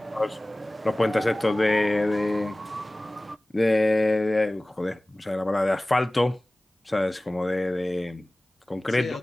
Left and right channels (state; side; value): normal; both; correlation 0.98